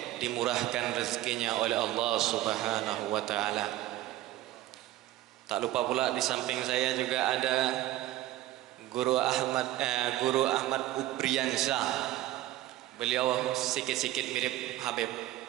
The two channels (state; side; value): quieter; left; 15.0 dB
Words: dimurahkan rezekinya oleh Allah Subhanahu wa taala. Tak lupa pula di samping saya juga ada Guru Ahmad Ubriansyah. Beliau sikit-sikit mirip Habib.